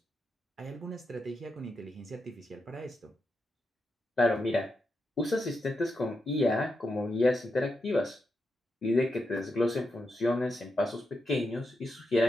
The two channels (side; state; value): both; normal; correlation 0.85